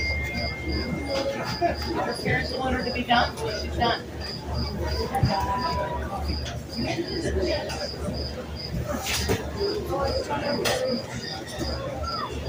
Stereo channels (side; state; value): both; identical; correlation 1.00